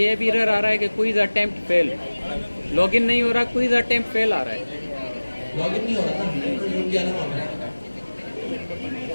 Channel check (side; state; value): both; inverted; correlation -1.00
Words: भी एरर आ रहा है कि क्विज अटेम्प्ट फेल, लॉगिन नहीं हो रहा, क्विज अटेम्प्ट फेल आ रहा है। लॉगिन नहीं हो रहा ना, तो जुड़ गया ना वहाँ पे,